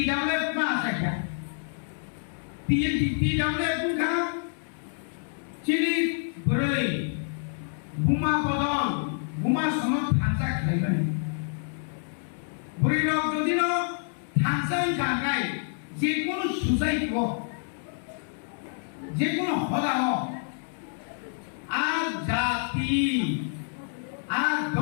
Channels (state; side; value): silent; right; 60 dB below the other